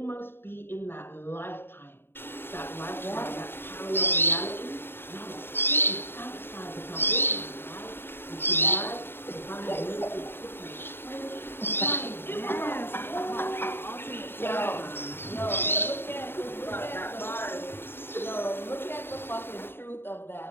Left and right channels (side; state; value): right; late; 0.11 ms